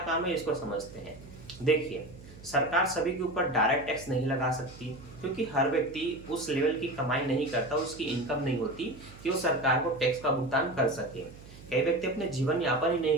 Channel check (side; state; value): right; noise; hum, 18 dB below the sound